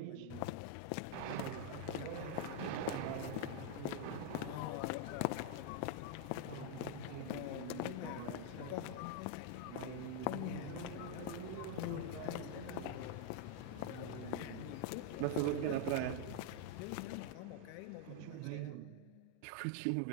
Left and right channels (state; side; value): different; both; correlation 0.00